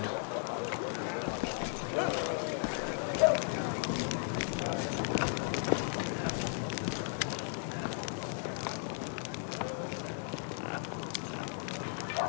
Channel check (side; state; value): right; silent; 54 dB below the other